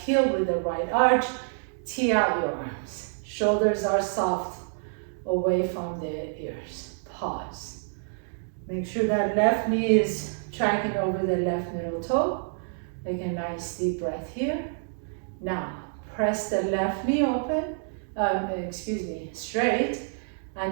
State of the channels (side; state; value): left; silent; digital silence